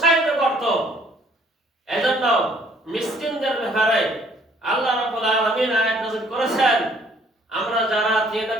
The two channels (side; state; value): both; normal; correlation 0.60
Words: করতো। এজন্য মিসকিনদের ব্যাপারে আল্লাহ রাব্বুল আলামিন আয়াত নাযিল করেছেন। আমরা যারা